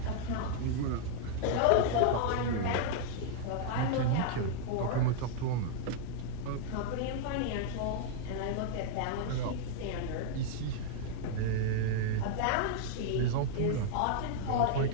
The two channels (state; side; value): different; both; correlation 0.00